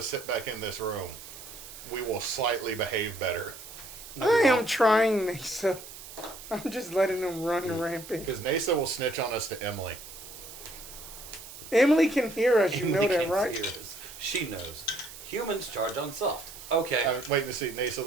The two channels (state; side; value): noise; right; hiss, 14 dB below the sound